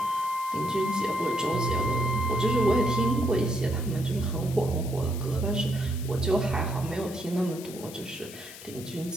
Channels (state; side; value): noise; left; hiss, 15 dB below the sound